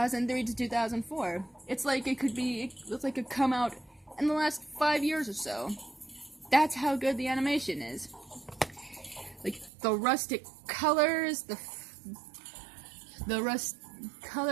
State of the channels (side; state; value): left; drops out; at 9.7 s